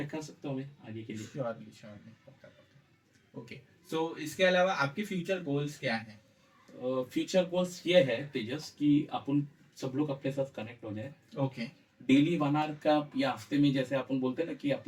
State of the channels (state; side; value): identical; both; correlation 1.00